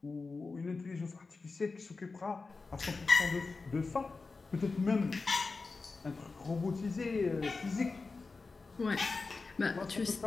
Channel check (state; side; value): quieter; right; 4.1 dB